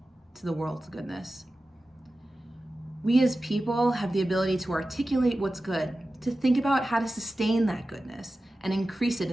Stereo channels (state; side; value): normal; both; correlation 0.94